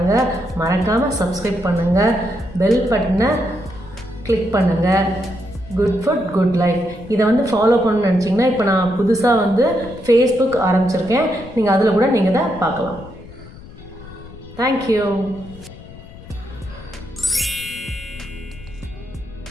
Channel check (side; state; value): left; noise; rumble, 17 dB below the sound